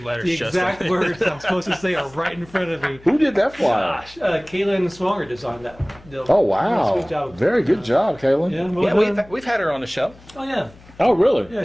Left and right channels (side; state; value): left; noise; hum, 24 dB below the sound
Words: letters, The exact Justin. words I'm supposed to say are right in front of me. Who did that flyer? Gosh, Kaylin Swanger designed that. Oh wow! Good job. Very good job, Kaylin. Yeah, well Yeah, done. we've had her on the show. Oh yeah, Oh really? yeah.